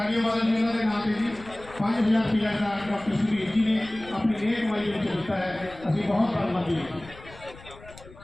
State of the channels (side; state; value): left; noise; rumble, 20 dB below the sound